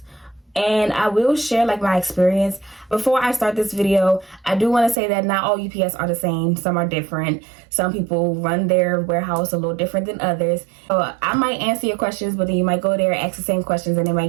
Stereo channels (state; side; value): drops out; left; at 5.0 s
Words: and I will share like my experience. Before I start this video, I do want to say that not all UPS are the same. Some are different. Some people run their warehouse a little different than others. So I might answer your questions, but then you might go there, ask the same questions, and they